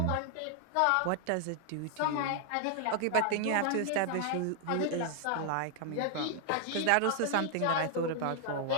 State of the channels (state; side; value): different; both; correlation 0.00